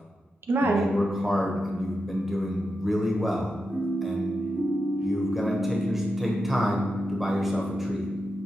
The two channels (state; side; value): normal; both; correlation 0.88